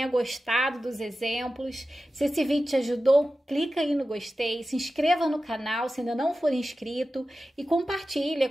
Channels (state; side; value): normal; both; correlation 0.94